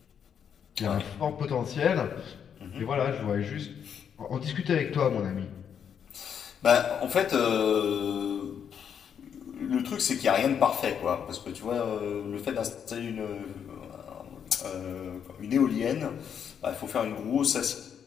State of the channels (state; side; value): quieter; right; 7.9 dB